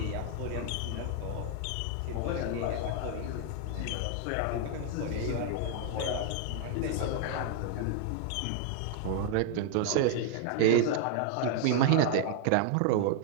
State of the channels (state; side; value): different; both; correlation 0.00